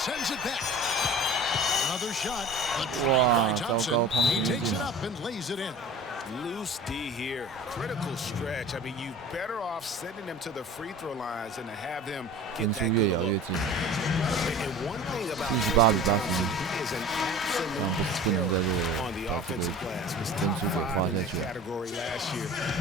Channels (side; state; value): both; normal; correlation 0.40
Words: it back. Another shot. Wow, Thompson. He takes it up and lays it in. Loose D here, critical stretch. I mean, you better off sending them to the free throw lines than to have them. 分数越咬越近。78比81，这样不能在这个把这个分数给花下去了。